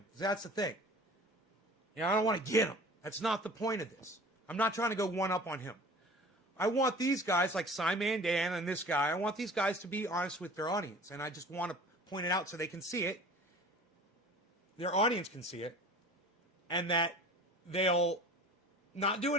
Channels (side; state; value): both; normal; correlation 0.43